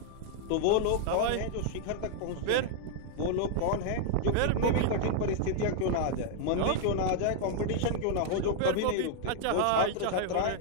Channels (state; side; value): different; both; correlation -0.01